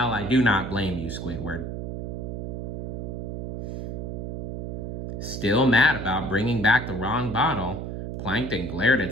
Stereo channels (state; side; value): noise; right; hum, 5 dB below the sound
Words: I do not blame you, Squidward. Still mad about bringing back the wrong bottle, Plankton glared at